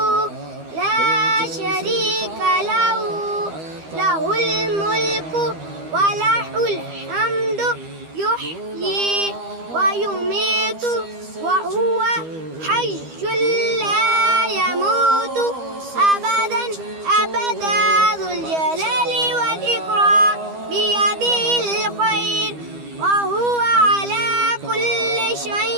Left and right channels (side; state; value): left; late; 12 ms